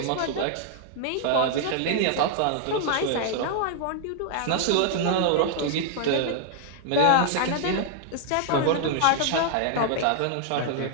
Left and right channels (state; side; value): different; both; correlation -0.01